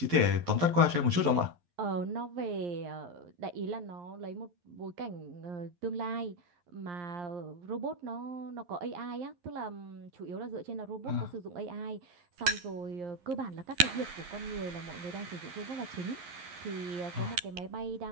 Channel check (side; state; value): left; late; 11 ms